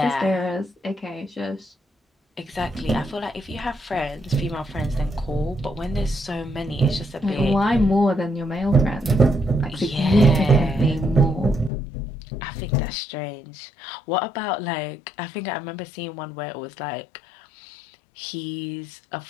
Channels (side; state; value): right; drops out; at 11.7 s